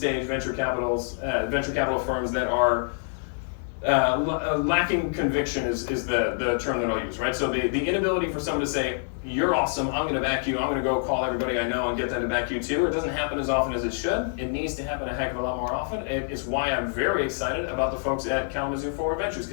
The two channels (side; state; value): right; silent; digital silence